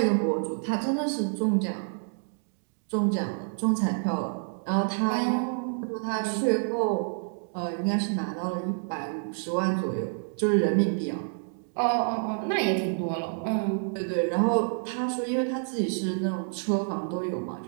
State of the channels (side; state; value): left; silent; digital silence